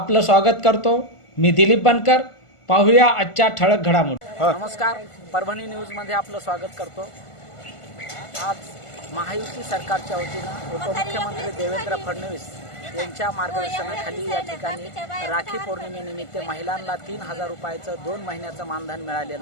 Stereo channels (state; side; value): late; right; 1.5 ms